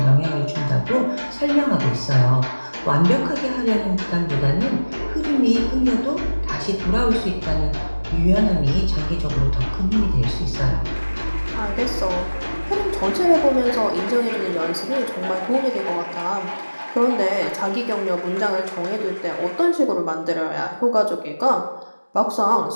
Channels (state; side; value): inverted; both; correlation -1.00